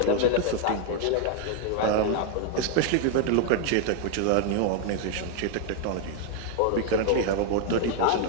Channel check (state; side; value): different; both; correlation 0.00